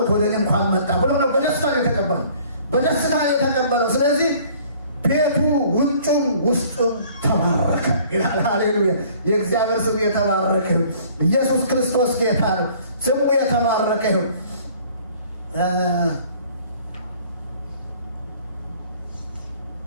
ወደ እኔ እንኳን መጣ ብሎ ነው በደስታ ነው የተቀበለው፣ በደስታ ነው የተቀበለው። ስለዚህ ቤቱ ውጩም ውስጡም ተባረከ ይላል። ሃሌሉያ! የእግዚአብሔር ስም የተባረከ። ኢየሱስ ክርስቶስ ጌታ ነው። ስሙ የተባረከ ነው።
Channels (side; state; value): both; inverted; correlation -0.54